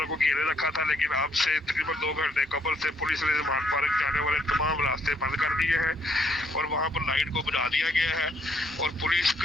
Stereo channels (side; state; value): both; normal; correlation 0.70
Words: को घेरे रखा था, लेकिन अब से तकरीबन 2 घंटे कबल से पुलिस ने ज़मान पार्क जाने वाले तमाम रास्ते बंद कर दिए हैं और वहां पर लाइट को बुझा दिया गया है। और पुलिस